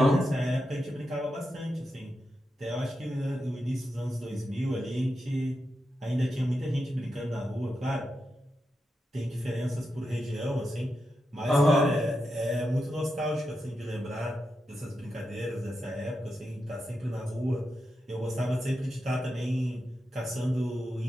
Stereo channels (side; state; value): both; normal; correlation 0.88